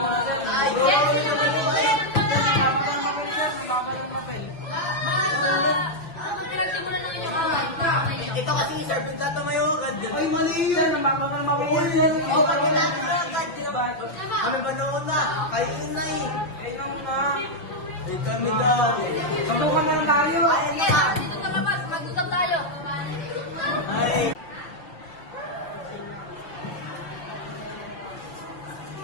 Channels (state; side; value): late; right; 5.9 ms